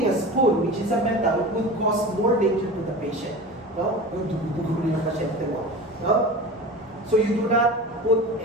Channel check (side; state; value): both; normal; correlation 0.33